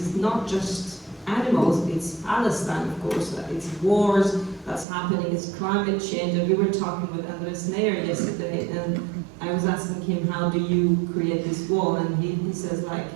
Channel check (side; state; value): left; drops out; at 4.9 s